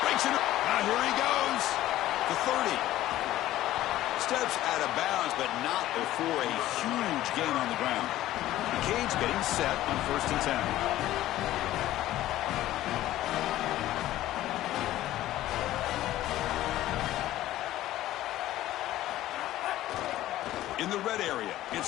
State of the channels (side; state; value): right; quieter; 14.6 dB